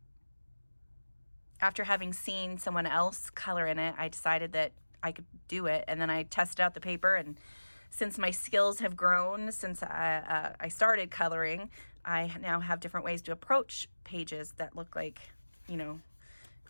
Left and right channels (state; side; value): inverted; both; correlation -1.00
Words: after having seen someone else color in it, I decided that I could do it, and then I tested out the paper, and since my skills have grown since I started coloring, I now have different ways to approach pages that look like,